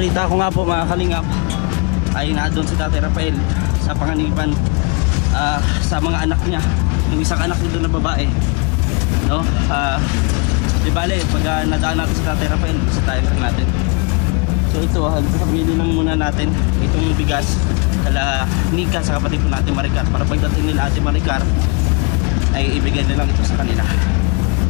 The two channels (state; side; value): quieter; right; 32.7 dB